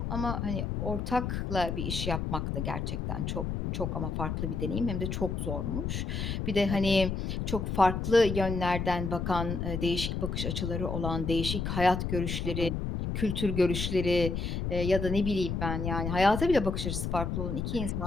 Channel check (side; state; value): left; noise; rumble, 2 dB below the sound